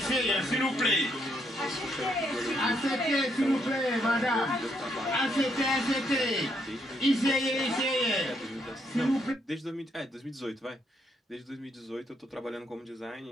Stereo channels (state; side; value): normal; both; correlation 0.75